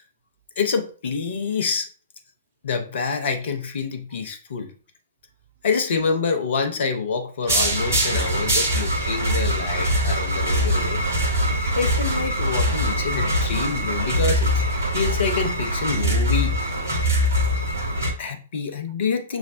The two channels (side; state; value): both; inverted; correlation -0.34